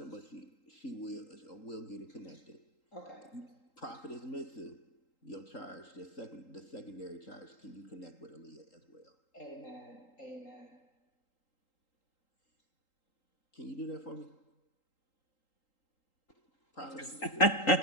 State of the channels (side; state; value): right; late; 3.8 ms